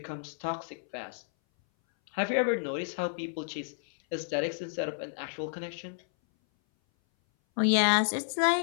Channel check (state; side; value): silent; right; 57 dB below the other